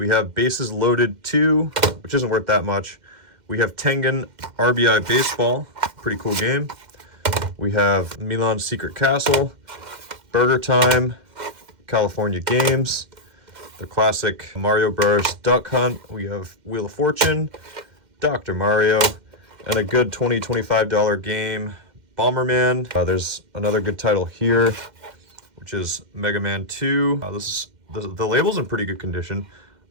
have Bases Loaded 2, which isn't worth that much. We have Tengen RBI Baseball, pretty cool game. We have Milan's Secret Castle, Burger Time, California Games, the classic Mario Bros. Duck Hunt. We have Wheel of Fortune, Dr. Mario, and a good $20-$25 game, Bomberman. There's another good title here, which is Mega Man 2. The label's in pretty good condition.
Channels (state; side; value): late; left; 2.1 ms